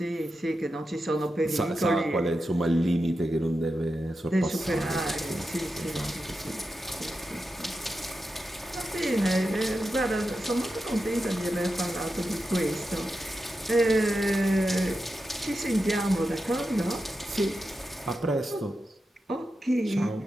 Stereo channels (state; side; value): normal; both; correlation 0.90